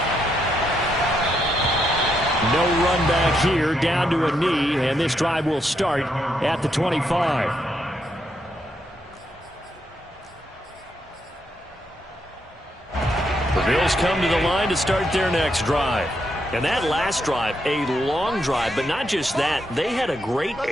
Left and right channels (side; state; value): both; normal; correlation 0.79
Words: No run back here, down to a knee, and this drive will start at the 25. The Bills come to the line to start their next drive. And that last drive, a long drive, but not just that, they had a great